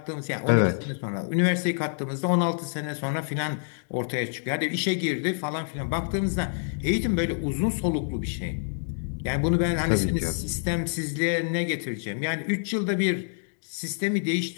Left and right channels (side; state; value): right; silent; digital silence